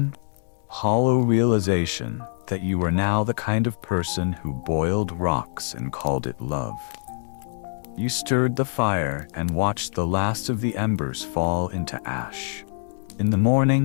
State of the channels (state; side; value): silent; right; digital silence